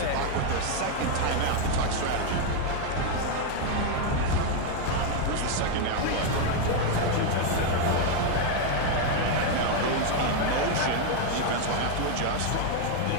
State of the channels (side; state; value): both; different; correlation 0.01